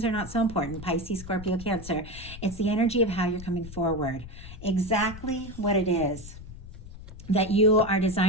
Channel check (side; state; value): left; noise; rumble, 13 dB below the sound